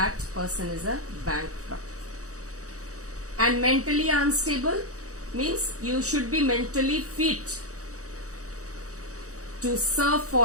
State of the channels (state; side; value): late; left; 0.66 ms